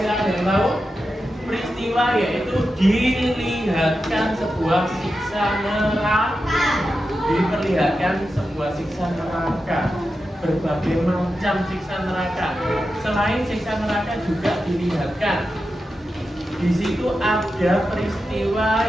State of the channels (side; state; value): both; normal; correlation 0.90